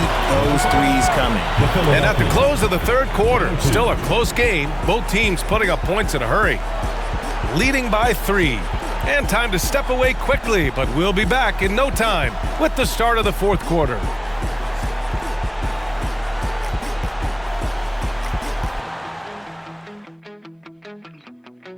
those threes coming. And at the close of the 3rd quarter, still a close game. Both teams putting up points in a hurry. Leading by 3. And time to step away quickly, but we'll be back in no time with the start of the 4th quarter.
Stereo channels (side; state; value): both; identical; correlation 1.00